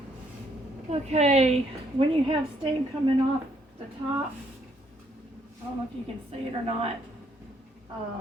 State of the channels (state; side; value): normal; both; correlation 0.70